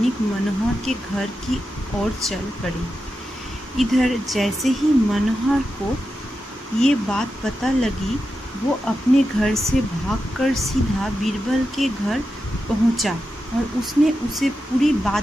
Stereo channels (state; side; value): normal; both; correlation 0.89